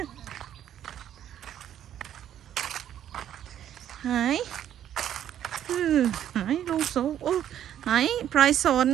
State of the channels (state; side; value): quieter; left; 10.6 dB